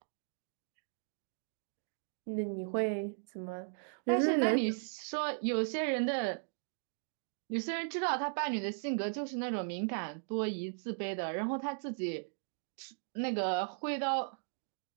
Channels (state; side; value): silent; left; digital silence